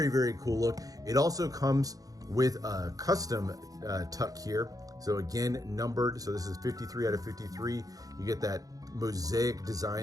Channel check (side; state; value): left; late; 0.17 ms